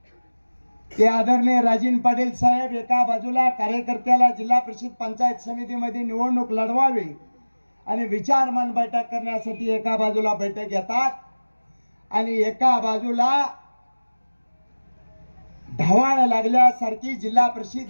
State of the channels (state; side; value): inverted; both; correlation -1.00